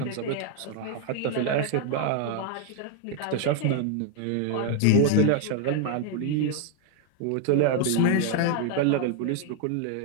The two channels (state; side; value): different; both; correlation 0.01